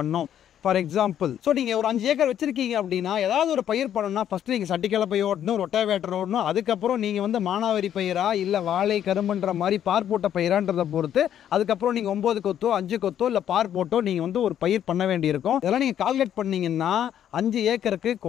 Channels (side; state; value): right; quieter; 10.2 dB